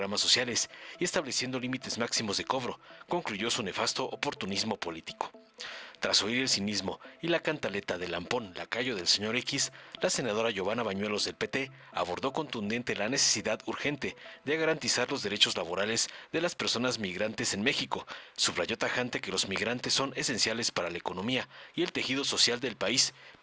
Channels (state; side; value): identical; both; correlation 1.00